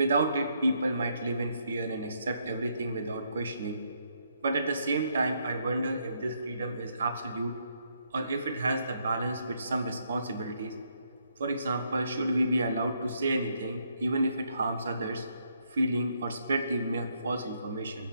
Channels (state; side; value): inverted; both; correlation -0.74